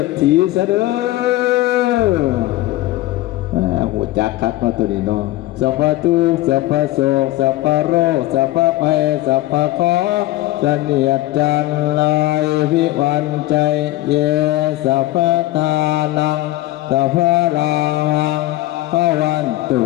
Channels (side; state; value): right; quieter; 16.8 dB